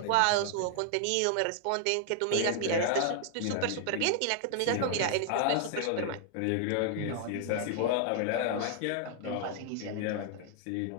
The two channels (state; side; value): different; both; correlation 0.00